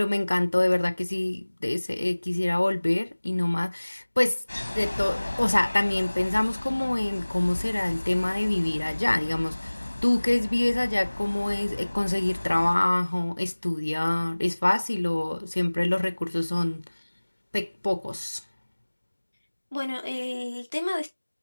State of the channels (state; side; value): inverted; both; correlation -1.00